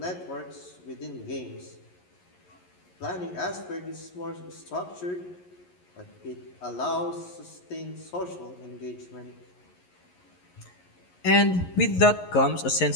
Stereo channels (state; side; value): late; right; 11 ms